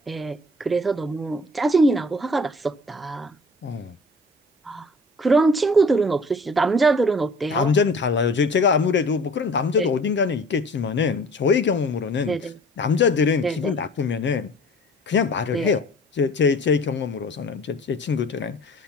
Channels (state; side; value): normal; both; correlation 0.47